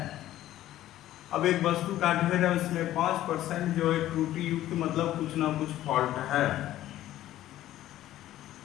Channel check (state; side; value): quieter; right; 13.7 dB